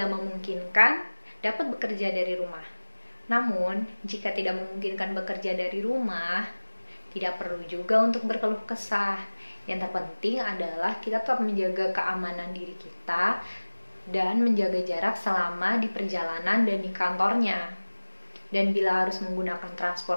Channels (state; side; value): inverted; both; correlation -1.00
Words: memungkinkan, dapat bekerja dari rumah. Namun, jika tidak memungkinkan bekerja dari rumah, tidak perlu juga untuk berkeluh kesah. Yang terpenting adalah kita tetap menjaga keamanan diri kita dan menjaga jarak selama di perjalanan dan di kantornya. Dan bila harus menggunakan